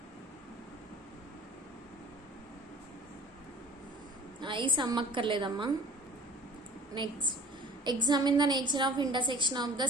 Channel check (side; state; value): both; normal; correlation 0.46